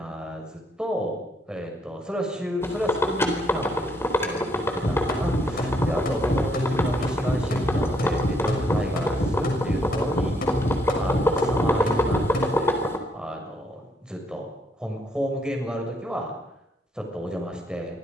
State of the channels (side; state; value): both; normal; correlation 0.72